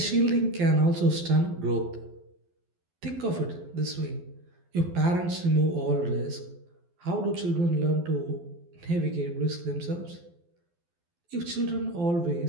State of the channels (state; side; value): late; left; 12 ms